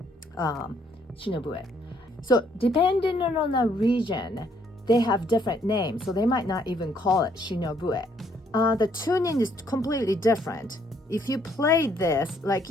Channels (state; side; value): normal; both; correlation 0.68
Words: Shinobue. So depending on the region, they have different names. So they might not even call it Shinobue. The tuning is completely different. If you play this like